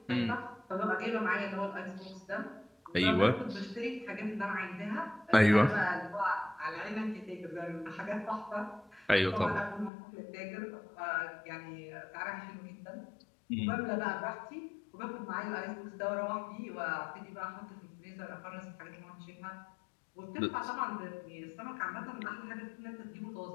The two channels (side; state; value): right; drops out; at 9.9 s